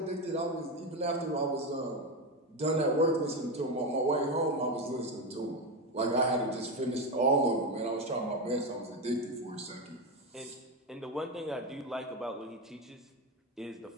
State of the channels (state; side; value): normal; both; correlation 0.14